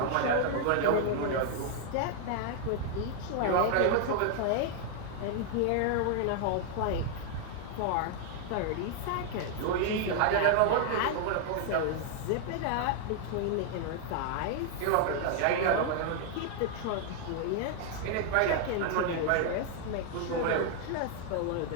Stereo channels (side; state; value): both; different; correlation 0.00